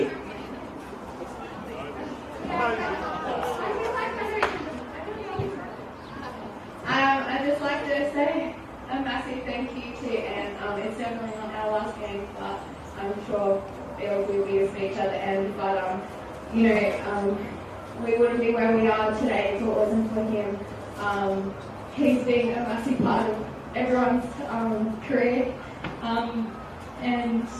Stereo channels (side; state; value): both; identical; correlation 1.00